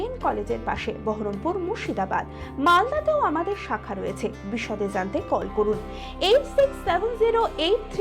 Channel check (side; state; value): both; identical; correlation 1.00